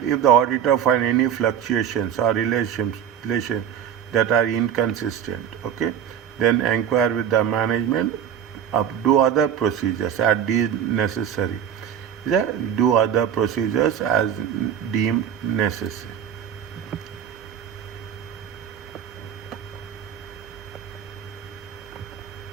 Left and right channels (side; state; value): left; quieter; 9.1 dB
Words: auditor find any fluctuations or relation that are inconsistent, okay, then inquire with the management, do other procedures as deemed necessary. Yeah, do other procedures as deemed necessary.